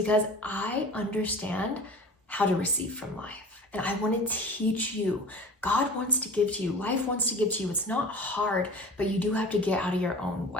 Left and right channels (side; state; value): both; normal; correlation 0.39